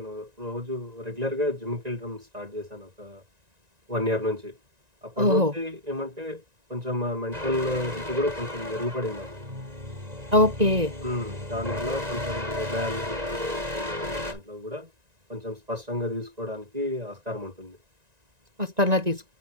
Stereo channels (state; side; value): late; left; 1.9 ms